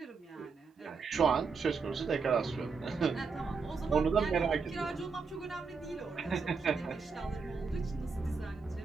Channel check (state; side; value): quieter; left; 4.9 dB